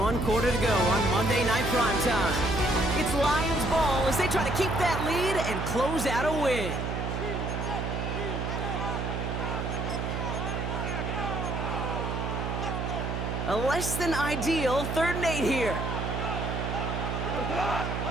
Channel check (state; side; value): noise; right; hum, 2 dB below the sound